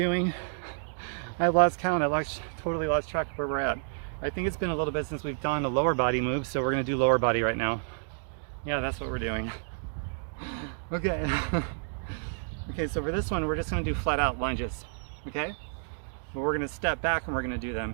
I lost count. Totally lost track of where we're at. I think it's been a little bit since we've done a lower body move, so we're gonna do lower body right now. Yeah, that's what we're doing. Okay. Okay, so for this one, we're just gonna do flat out lunges, okay? But we're gonna step back and we're gonna do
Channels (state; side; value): silent; left; digital silence